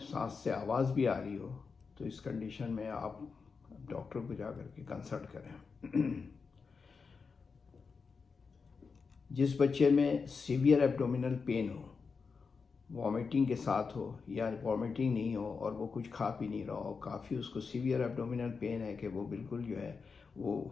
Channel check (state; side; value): quieter; right; 5.1 dB